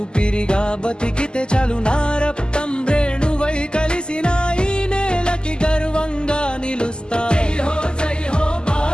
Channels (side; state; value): right; late; 0.047 ms